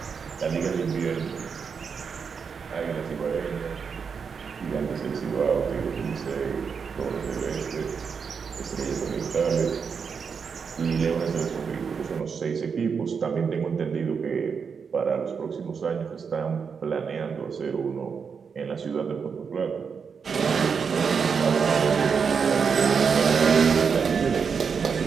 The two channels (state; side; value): quieter; left; 6.1 dB